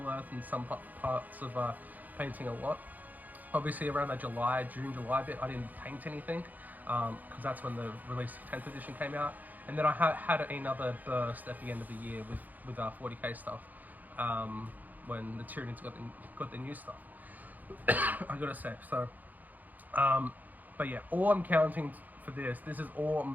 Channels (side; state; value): left; late; 0.082 ms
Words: Earth and some parts of painting a lot. Obviously around that June, July bit, I didn't paint anything because that's when the release of 10th edition came out. And then I had another burst at the end of the year with 40k stuff when the Tyranids got the new stuff. I gotta say. So, but yeah, all I'm counting for this is all